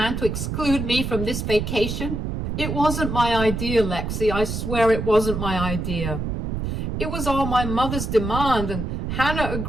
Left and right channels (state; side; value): noise; right; rumble, 3 dB below the sound